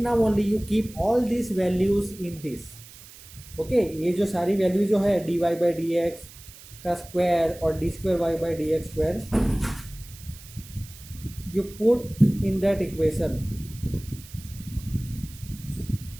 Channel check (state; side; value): noise; right; hiss, 19 dB below the sound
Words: only you keep all this values in this, okay? ये जो सारी वैल्यू जो है d y by d x का स्क्वायर और d square y by d x square, you put in that equation.